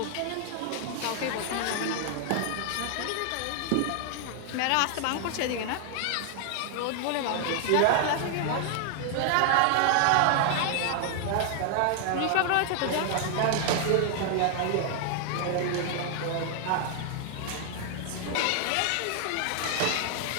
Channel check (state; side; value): different; both; correlation 0.00